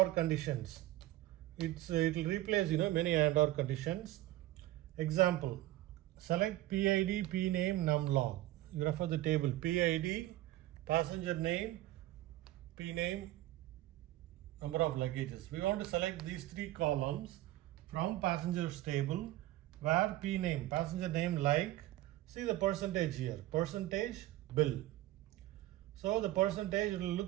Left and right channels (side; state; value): left; quieter; 15.9 dB